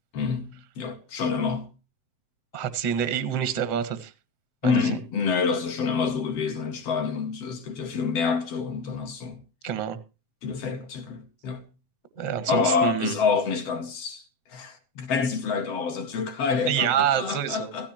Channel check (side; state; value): right; late; 7.7 ms